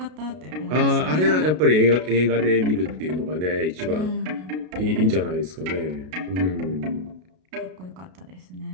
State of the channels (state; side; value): late; left; 33 ms